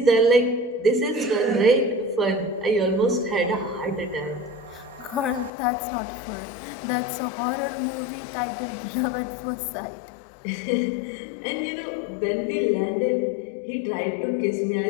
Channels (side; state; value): right; drops out; at 5.5 s